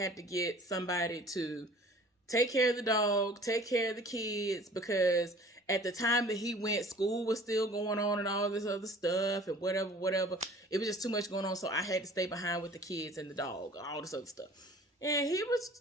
to get somebody to take care of the dog, take care of the kids, because at the time that he went, school was still going on and all this other stuff and whatever. It was just too much going on. So I had to stay behind with the kids and the dog, all this other stuff. And he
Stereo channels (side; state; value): both; normal; correlation 0.48